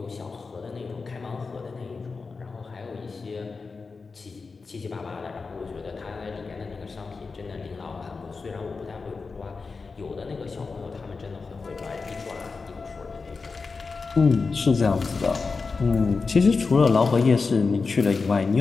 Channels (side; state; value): right; quieter; 4.5 dB